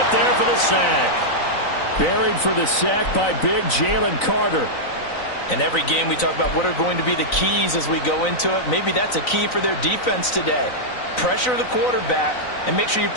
there for the sack. Buried for the sack by big Jalen Carter. In every game we talk about what are going to be the keys as we go into it. Maybe that's a key for their defense today. Pressure the quarterback and make sure you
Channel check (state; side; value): late; right; 3.9 ms